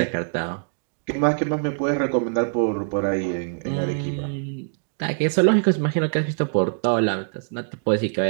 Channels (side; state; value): left; silent; digital silence